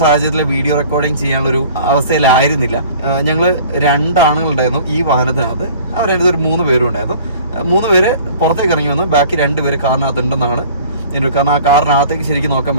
വീഡിയോ റെക്കോർഡിങ് ചെയ്യാനുള്ളൊരു അവസ്ഥയിലായിരുന്നില്ല. ഞങ്ങൾ 2 ആണുങ്ങളുണ്ടായിരുന്നു ഈ വാഹനത്തിനകത്ത്. അവരതിനകത്ത് ഒരു 3 പേരും ഉണ്ടായിരുന്നു. 3 പേര് പുറത്തേക്ക് ഇറങ്ങി വന്നു, ബാക്കി 2 പേര് കാറിനകത്ത് ഉണ്ടെന്നാണ്. കാരണം ആ കാറിനകത്തേക്ക് ശരിക്കും നോക്കാൻ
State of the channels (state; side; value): inverted; both; correlation -0.48